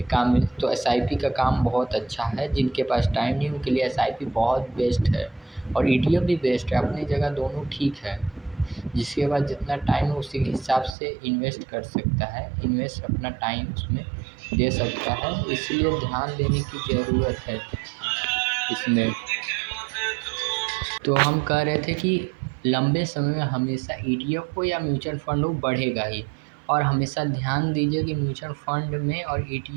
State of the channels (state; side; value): drops out; left; at 11.0 s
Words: काम में, तो एसआईपी का काम बहुत अच्छा है। जिनके पास टाइम नहीं उनके लिए एसआईपी बहुत बेस्ट है। और ईटीएफ भी बेस्ट है, अपनी जगह दोनों ठीक है। जिसके बाद जितना टाइम है उसी के हिसाब से इन्वेस्ट कर सकता है, इन्वेस्ट अपना टाइम उसमें दे सकता है, इसलिए ध्यान देने की ज़रूरत है इसमें। तो हम कह रहे थे कि लंबे समय में हमेशा ईटीएफ हो या म्यूचुअल फंड हो, बढ़ेगा ही। और हमेशा ध्यान दीजिए कि म्यूचुअल फंड में और